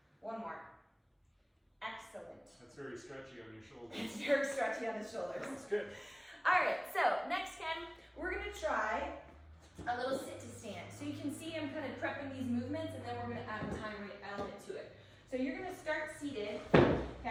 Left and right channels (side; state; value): both; identical; correlation 1.00